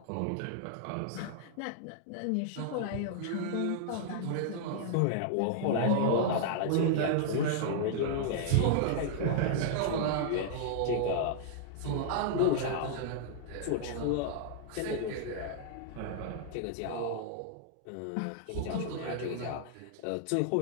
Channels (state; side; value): different; both; correlation -0.01